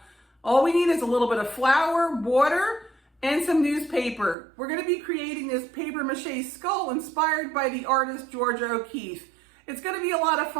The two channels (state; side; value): drops out; left; at 4.4 s